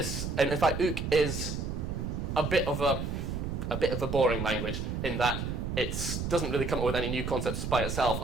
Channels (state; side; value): noise; right; rumble, 3 dB below the sound